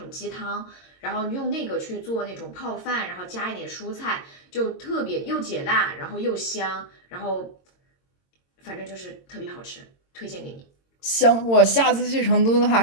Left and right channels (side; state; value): right; late; 22 ms